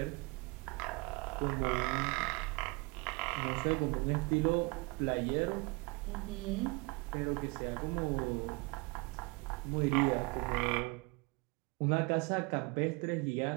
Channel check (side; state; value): left; quieter; 27.4 dB